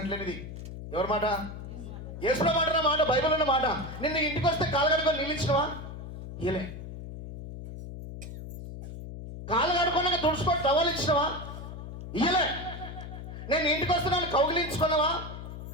ఎవరి మాట? యేసుప్రభు మాట, మాట బైబిల్ ఉన్న మాట. నిన్న ఇంటికి వస్తే కాళ్ళగనుకొని నీళ్ళు ఇచ్చినావా? ఇయలే. కాళ్ళు కడుకున్నాక తుడుచుకొని టవల్ ఇచ్చినావా? ఇయలే. నేను ఇంటికి వస్తున్నాను, కౌగిలించుకున్నావా?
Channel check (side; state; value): left; noise; hum, 10 dB below the sound